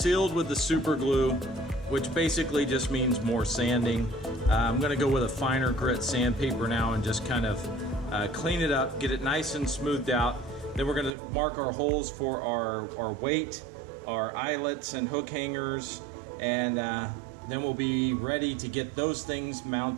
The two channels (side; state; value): left; drops out; at 11.1 s